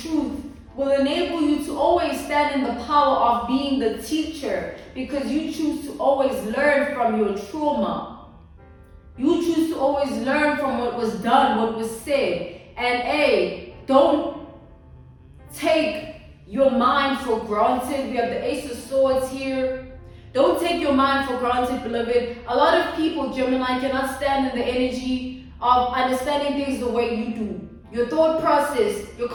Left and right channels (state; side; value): identical; both; correlation 1.00